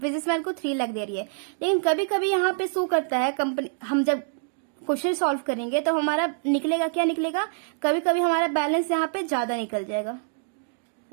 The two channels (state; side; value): silent; left; digital silence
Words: को 3 लाख दे रही है। लेकिन कभी कभी यहाँ पे शो करता है कंपनी, हम जब क्वेश्चन सॉल्व करेंगे तो हमारा निकलेगा क्या निकलेगा, कभी कभी हमारा बैलेंस यहाँ पे ज्यादा निकल जाएगा,